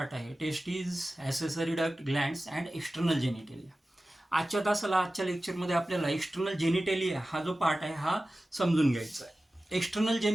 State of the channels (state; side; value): normal; both; correlation 0.95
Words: आहे: testes, accessory duct, glands and external genitalia. आजच्या लेक्चरमध्ये आपल्याला एक्सटर्नल जेनिटेलिया हा जो पार्ट आहे हा समजून घ्यायचा आहे. एक्सटर्नल